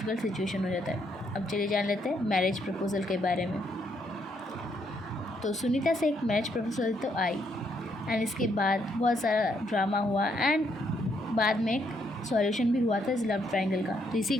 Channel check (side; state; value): both; normal; correlation 0.74